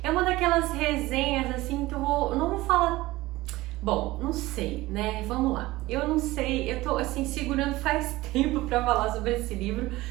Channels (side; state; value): left; quieter; 18.7 dB